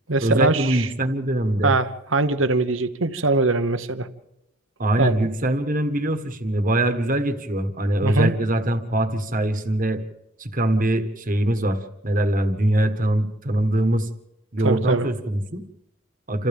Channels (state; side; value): normal; both; correlation 0.53